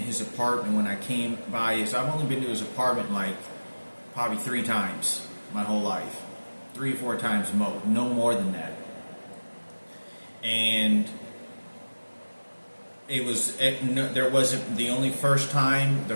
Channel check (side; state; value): both; inverted; correlation -1.00